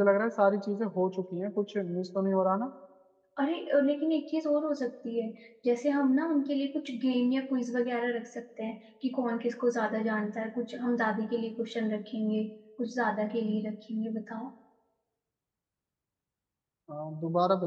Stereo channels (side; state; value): both; identical; correlation 1.00